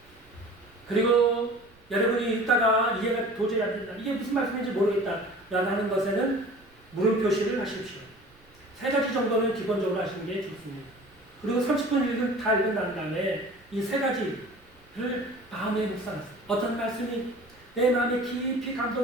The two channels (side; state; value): right; noise; rumble, 29 dB below the sound